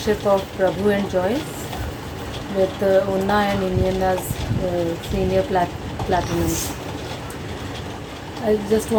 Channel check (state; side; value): identical; both; correlation 1.00